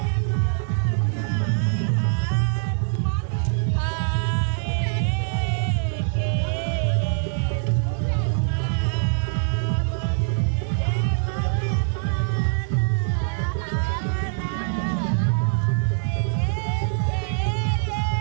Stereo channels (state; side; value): silent; left; digital silence